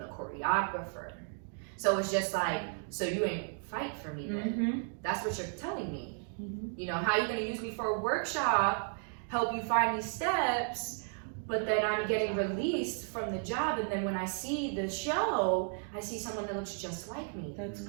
choreographer. So it's just like, so you ain't fight for me then. That's what you're telling me. How you gonna use me for a workshop, help you find these steps, but then I'm getting released from the job, and then when I see the show, I see someone that looks just like me. That's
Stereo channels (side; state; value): left; silent; 55 dB below the other